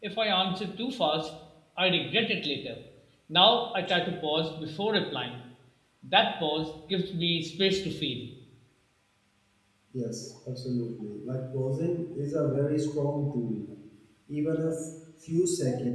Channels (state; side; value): identical; both; correlation 1.00